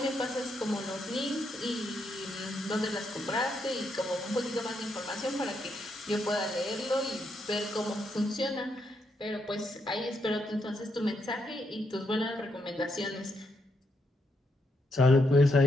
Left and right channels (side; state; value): both; normal; correlation 0.79